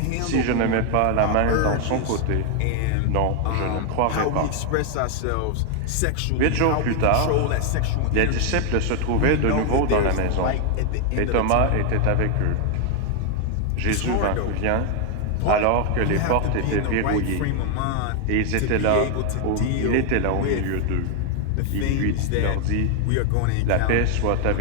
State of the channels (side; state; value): both; different; correlation 0.00